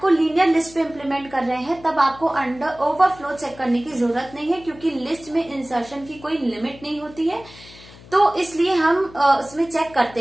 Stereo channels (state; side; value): noise; left; hum, 21 dB below the sound